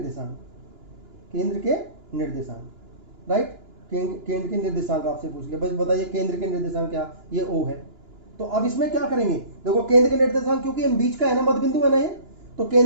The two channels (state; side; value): late; left; 2.9 ms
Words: केंद्र के निर्देशांक, राइट, केंद्र के निर्देशांक आपसे पूछ लिया। बस बताइए केंद्र के निर्देशांक क्या, ये O है। तो अब इसमें क्या करेंगे, देखो केंद्र के निर्देशांक क्योंकि हम बीच का है ना, मध्य बिंदु है ना ये, तो